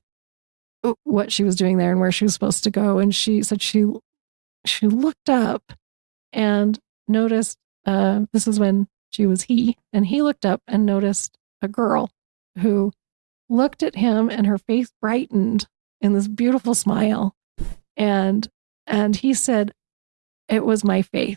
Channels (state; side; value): silent; left; digital silence